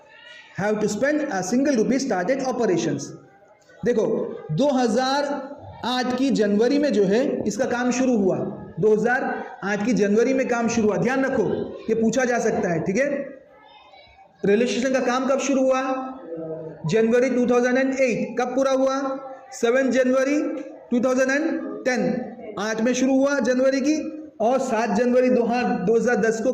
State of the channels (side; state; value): both; identical; correlation 1.00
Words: have to spend a single rupee started operations. देखो 2008 की जनवरी में जो है इसका काम शुरू हुआ। 2008 की जनवरी में काम शुरू हुआ, ध्यान रखो ये पूछा जा सकता है। ठीक है, रेलवे स्टेशन का काम कब शुरू हुआ? जनवरी 2008। कब पूरा हुआ? 7 जनवरी 2010। 8 में शुरू हुआ जनवरी की और 7 जनवरी 2010 को